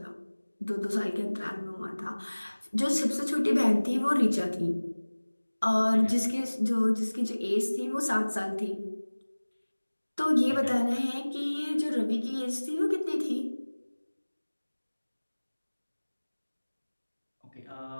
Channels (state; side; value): inverted; both; correlation -1.00